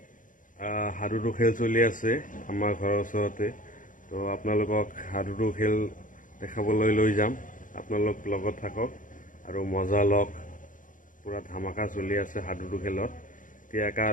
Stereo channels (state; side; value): late; right; 0.38 ms